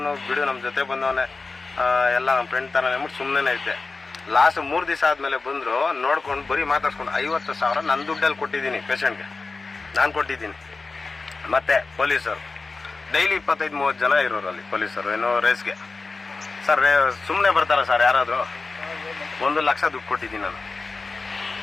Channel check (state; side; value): quieter; right; 3.9 dB